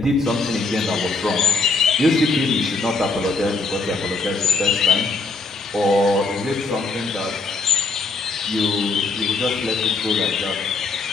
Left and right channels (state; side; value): quieter; right; 3.7 dB